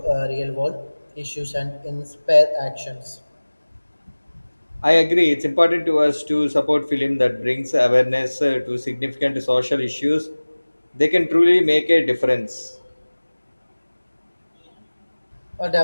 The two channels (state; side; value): inverted; both; correlation -1.00